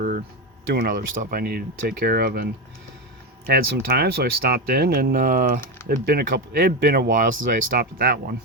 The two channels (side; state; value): both; normal; correlation 0.13